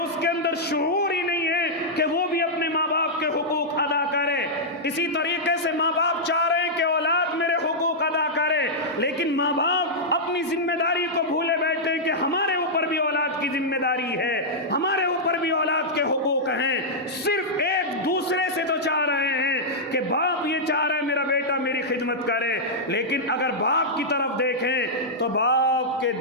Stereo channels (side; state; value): both; normal; correlation -0.08